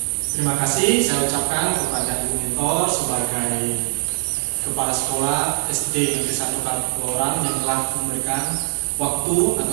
Terima kasih saya ucapkan kepada Ibu Mentor sebagai Kepala Sekolah SD Negeri 1 Kaloran yang telah memberikan waktu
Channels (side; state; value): left; silent; 61 dB below the other